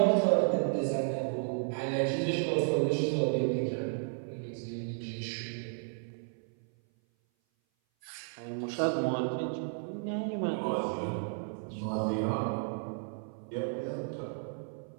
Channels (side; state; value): left; silent; 56 dB below the other